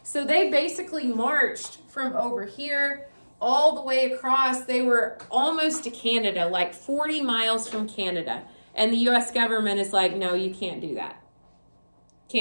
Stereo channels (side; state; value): both; inverted; correlation -1.00